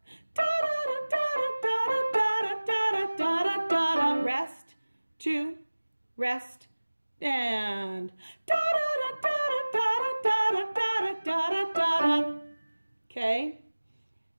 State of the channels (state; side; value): inverted; both; correlation -1.00